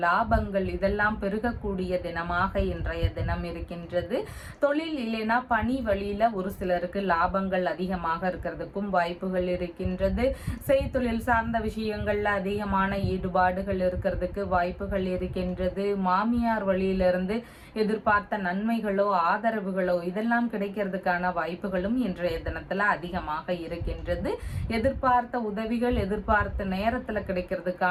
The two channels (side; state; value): both; identical; correlation 1.00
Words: லாபங்கள் இதெல்லாம் பெருகக்கூடிய தினமாக இன்றைய தினம் இருக்கின்றது. தொழில் இல்லைனா பணி வழியில ஒரு சிலருக்கு லாபங்கள் அதிகமாக இருக்கிறதுக்கும் வாய்ப்புகள் இருக்கின்றது. செய்தொழில் சார்ந்த விஷயங்கள்ல அதிகமான ஈடுபாடுகள் இருக்கிறதுக்கு வாய்ப்புகள் இருக்கின்றது. மாமியார் வழியிலிருந்து எதிர்பார்த்த நன்மைகளோ ஆதரவுகளோ இதெல்லாம் கிடைக்கிறதுக்கான வாய்ப்புகளும் இன்றைய தினத்துல அதிகமாக இருக்கின்றது. எதிர்பார்த்த உதவிகள் எதிர்பார்த்த நேரத்துல